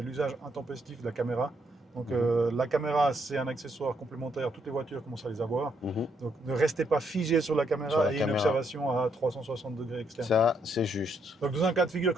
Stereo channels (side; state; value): both; normal; correlation 0.74